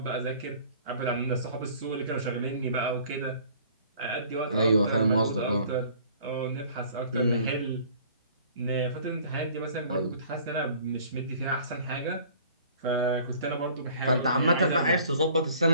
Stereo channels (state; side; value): inverted; both; correlation -0.52